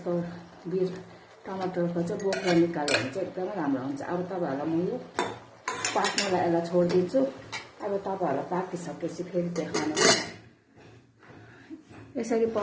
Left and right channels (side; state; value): both; identical; correlation 1.00